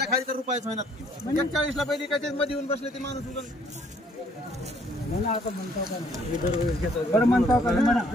खाली तर रुपयाच महिन्यात 41ला पहिली काय मध्ये येऊन बसले ते माणूस बरं म्हणतो का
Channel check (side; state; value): both; normal; correlation 0.63